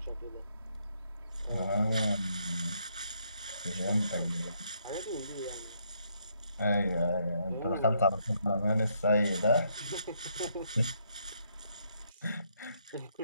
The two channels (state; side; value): inverted; both; correlation -0.73